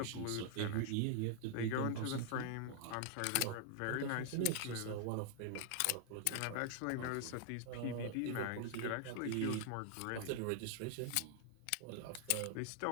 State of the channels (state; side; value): different; both; correlation 0.00